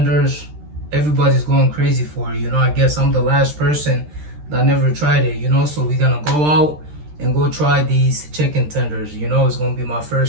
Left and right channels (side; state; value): left; late; 13 ms